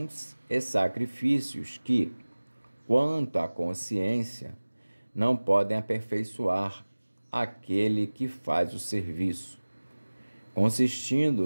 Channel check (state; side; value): inverted; both; correlation -1.00